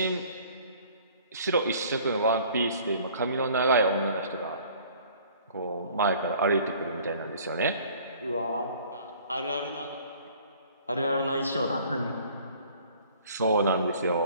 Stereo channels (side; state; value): both; inverted; correlation -0.53